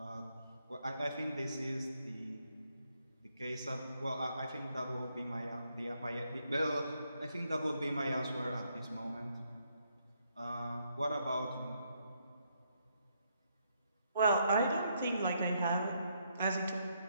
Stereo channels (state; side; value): inverted; both; correlation -0.75